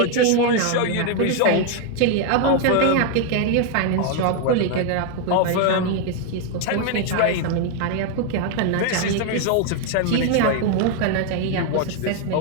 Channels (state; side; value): different; both; correlation 0.00